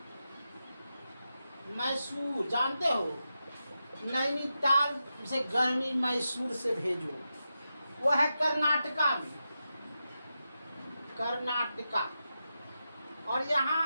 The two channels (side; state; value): both; inverted; correlation -0.89